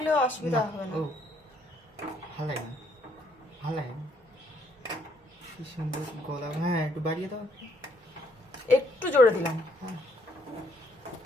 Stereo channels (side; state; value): both; normal; correlation 0.69